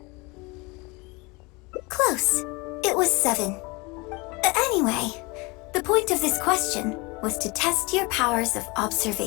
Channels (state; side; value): quieter; right; 26.1 dB